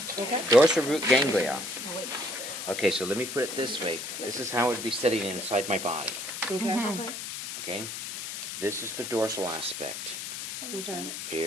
Dorsal root ganglia. Okay, so let me put it this way. This is how it would be sitting inside my body. Okay. Okay? This is the dorsal aspect. Okay.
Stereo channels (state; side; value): noise; left; hiss, 7 dB below the sound